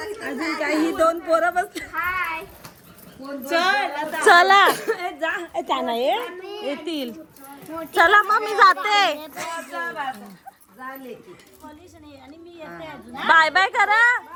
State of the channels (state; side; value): identical; both; correlation 1.00